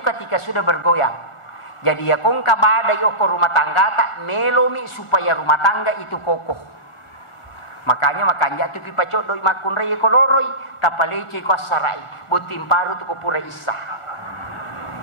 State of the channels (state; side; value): late; right; 1.5 ms